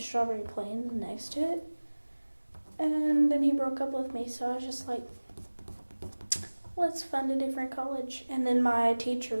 Plains next to it. And then he broke up with me, so I was just like, let's find a different college. And then my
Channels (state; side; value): inverted; both; correlation -1.00